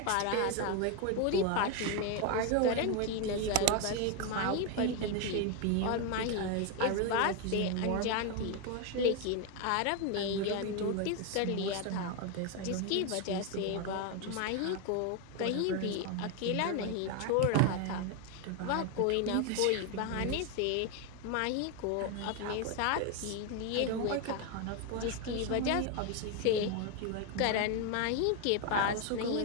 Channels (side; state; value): both; different; correlation 0.01